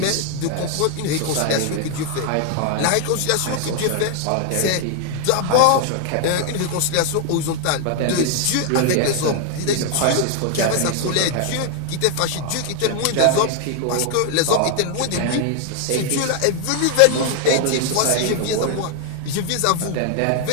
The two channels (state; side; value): different; both; correlation 0.00